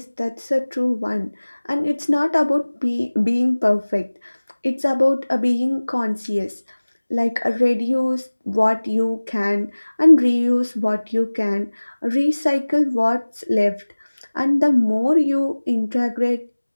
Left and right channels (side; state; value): both; inverted; correlation -1.00